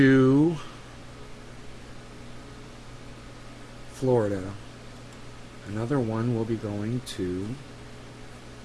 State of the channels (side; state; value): both; identical; correlation 1.00